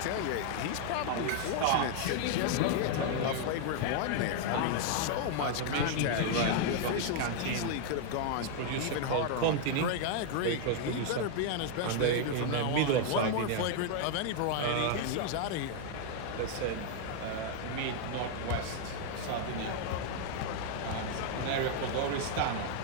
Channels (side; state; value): both; different; correlation 0.00